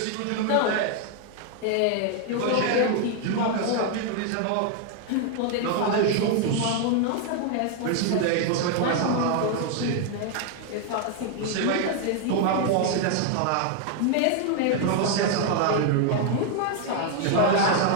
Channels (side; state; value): both; different; correlation 0.00